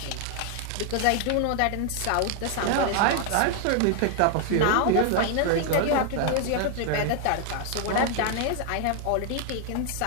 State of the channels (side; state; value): both; different; correlation 0.00